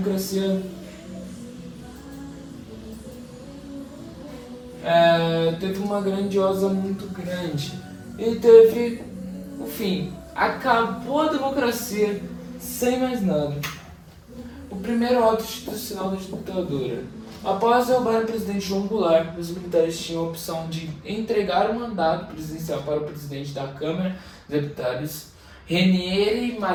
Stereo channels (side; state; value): both; identical; correlation 1.00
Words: teve uma grandiosa muito grande. E teve o fim. Acabou a democracia sem mais nada. O primeiro ato institucional da ditadura. Após derrubar o presidente João Goulart, os militares tinham a opção de entregar o mandato presidencial para o presidente da Câmara dos Deputados, Ranieri